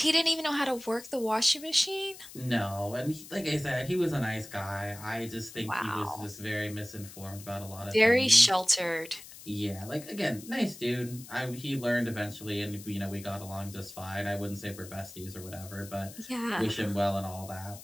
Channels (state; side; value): noise; left; hiss, 16 dB below the sound